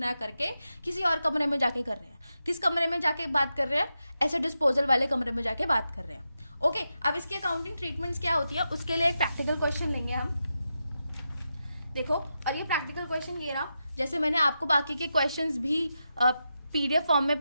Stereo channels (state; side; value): inverted; both; correlation -0.88